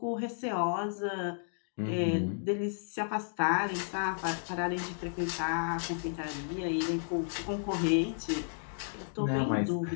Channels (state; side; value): silent; right; digital silence